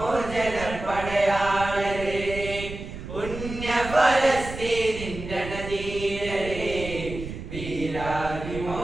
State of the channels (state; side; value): noise; right; rumble, 10 dB below the sound